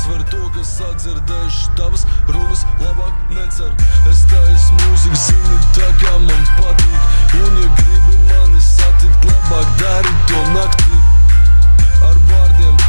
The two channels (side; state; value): both; inverted; correlation -1.00